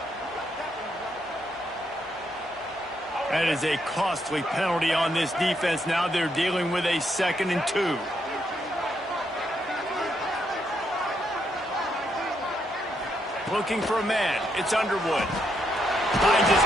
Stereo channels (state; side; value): normal; both; correlation 0.77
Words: That is a costly penalty on this defense. Now they're dealing with a 2nd and 2. Looking for a man. It's Underwood. Finds his